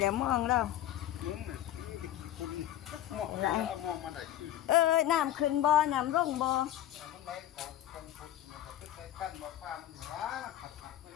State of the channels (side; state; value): right; quieter; 12.4 dB